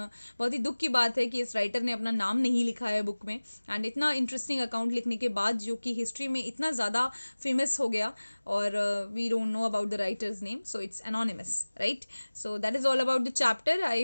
बहुत ही दुख की बात है कि इस राइटर ने अपना नाम नहीं लिखा है बुक में, एंड इतना इंटरेस्टिंग अकाउंट लिखने के बाद जो कि हिस्ट्री में इतना ज़्यादा फेमस हो गया, और we don't know about the writer's name, so it's anonymous, right? So that is all about the chapter. I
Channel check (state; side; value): inverted; both; correlation -1.00